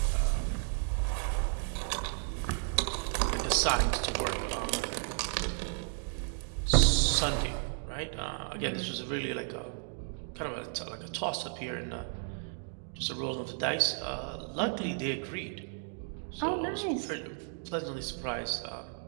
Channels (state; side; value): silent; left; 55 dB below the other